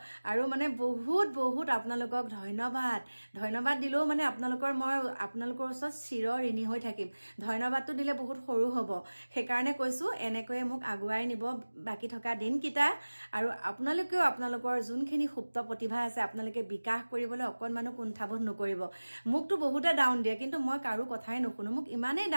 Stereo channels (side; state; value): both; inverted; correlation -1.00